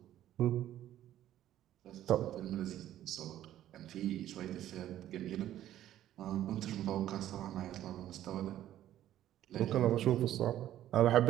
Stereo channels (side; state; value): left; quieter; 12.5 dB